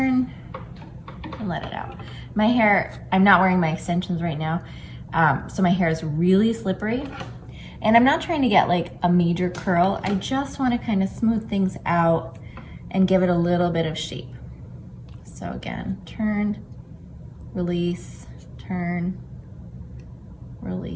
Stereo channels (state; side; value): identical; both; correlation 1.00